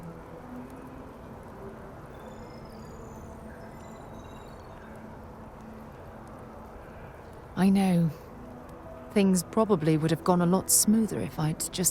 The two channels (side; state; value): both; identical; correlation 1.00